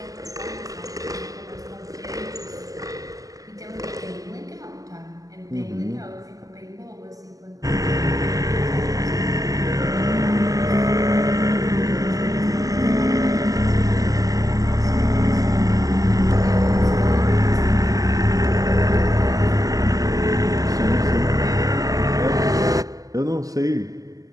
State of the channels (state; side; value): late; left; 0.17 ms